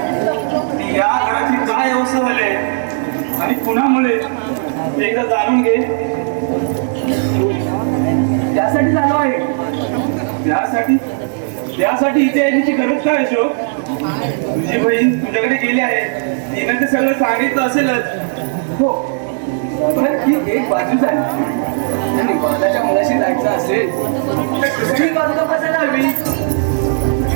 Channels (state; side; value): silent; left; digital silence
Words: या घराची काय अवस्था झाली आणि कुणामुळे एकदा जाणून घे. त्यासाठी झालो आहे. त्यासाठी इथे येण्याची गरज काय अशोक? तुझी बहीण तुझ्याकडे गेली आहे, तिने ते सगळं सांगितलं असेलच. हो, पण ती एक बाजू झाली आणि माझ्या मुलाशी जायचं असेल तर दुसरी बाजू तपासायला हवी.